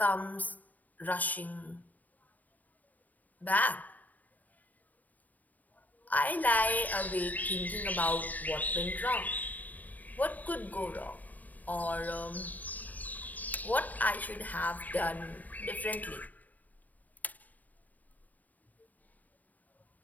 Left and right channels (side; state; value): right; late; 0.079 ms